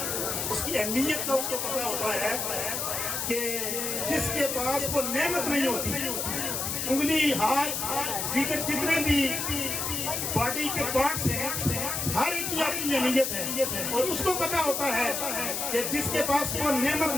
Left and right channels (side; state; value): left; noise; hiss, 2 dB below the sound